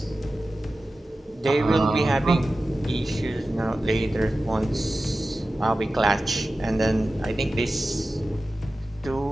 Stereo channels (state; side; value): normal; both; correlation 0.94